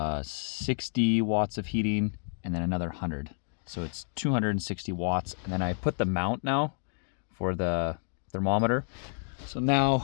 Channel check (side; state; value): right; silent; 58 dB below the other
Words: 60 watts of heating, and then another 100. So it's 260 watts. And then I put the mount now for the thermometer. So